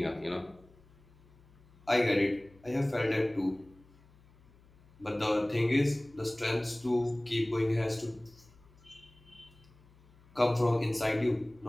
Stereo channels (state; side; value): noise; left; hum, 27 dB below the sound